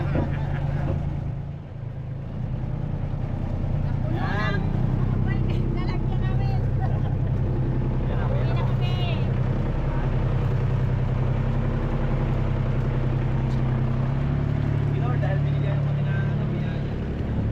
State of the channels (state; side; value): identical; both; correlation 1.00